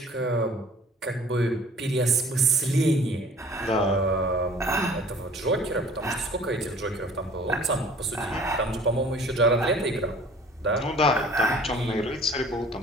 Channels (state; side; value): normal; both; correlation 0.49